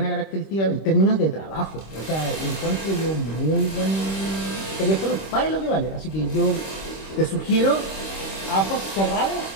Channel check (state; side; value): late; right; 26 ms